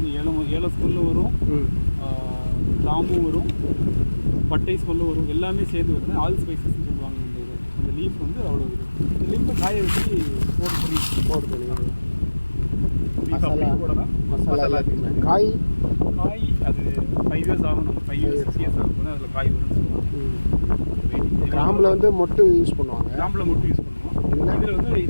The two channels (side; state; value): both; inverted; correlation -1.00